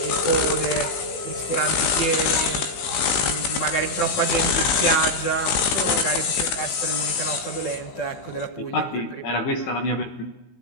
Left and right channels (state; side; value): late; right; 16 ms